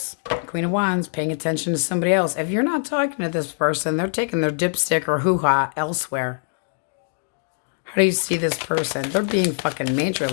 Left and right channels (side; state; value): right; silent; 60 dB below the other